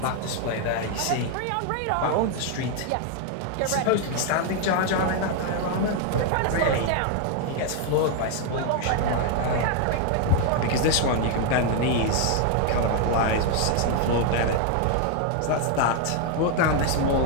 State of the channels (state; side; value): different; both; correlation 0.00